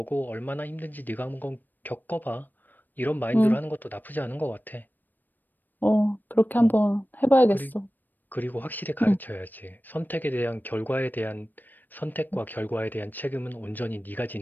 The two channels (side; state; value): right; late; 0.089 ms